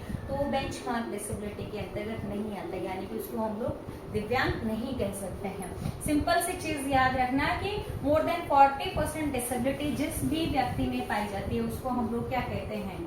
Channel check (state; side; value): identical; both; correlation 1.00